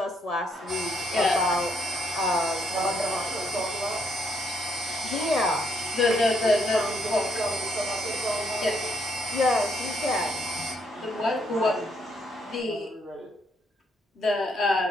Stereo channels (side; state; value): both; normal; correlation 0.72